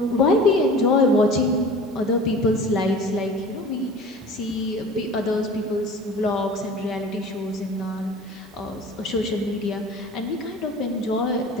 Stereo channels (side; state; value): both; normal; correlation 0.41